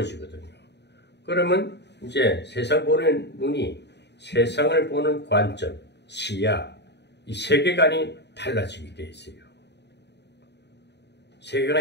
그러면 이제 세상 보는 눈이 세상을 보는 관점, 시야, 이 세계관이 달라지게 돼 있어요.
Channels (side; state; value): right; late; 0.50 ms